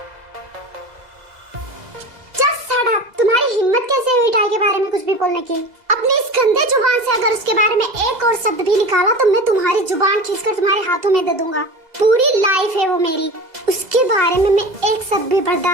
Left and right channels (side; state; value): left; late; 2.0 ms